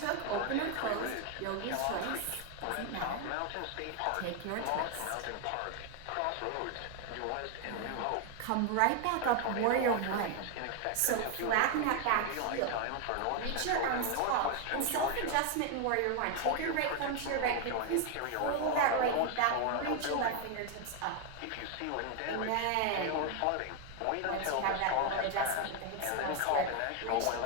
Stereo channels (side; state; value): both; different; correlation 0.01